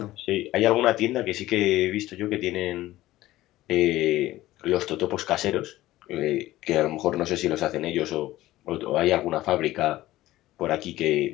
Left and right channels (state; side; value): quieter; right; 16.1 dB